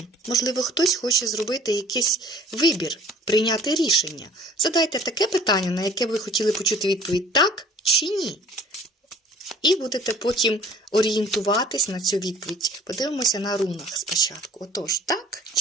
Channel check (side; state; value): both; normal; correlation 0.51